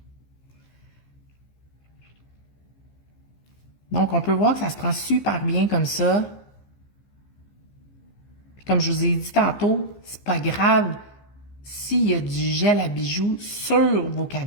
Donc, on peut voir que ça se prend super bien comme ça. Comme je vous ai dit tantôt, c'est pas grave s'il y a du gel à bijoux sur vos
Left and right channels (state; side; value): late; right; 15 ms